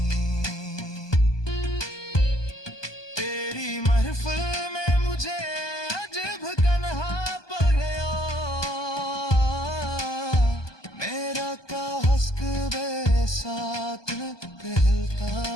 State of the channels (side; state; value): right; late; 1.2 ms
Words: तेरी महफिल में मुझे अजब कन्हा पड़ गया, मेरा का हस्क बे साथ कहता